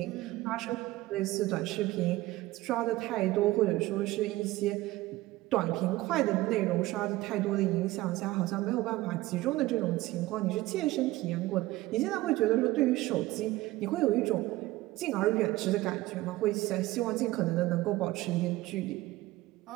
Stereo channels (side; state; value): left; quieter; 17.9 dB